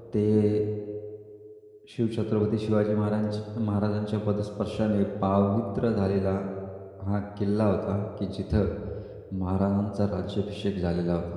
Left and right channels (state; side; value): identical; both; correlation 1.00